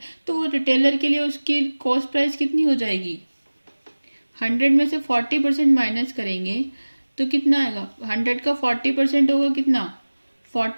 तो वो रिटेलर के लिए उसकी कॉस्ट प्राइस कितनी हो जाएगी। 100 में से 40% माइनस करेंगे तो कितना आएगा। 100 का 40% होगा कितना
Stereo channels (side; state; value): both; inverted; correlation -1.00